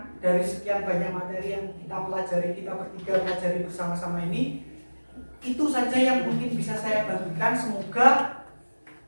dari sekian banyak materi yang kita pelajari, kita bertiga pelajari bersama-sama ini. Itu saja yang mungkin bisa saya bagikan. Semoga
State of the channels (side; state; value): both; inverted; correlation -1.00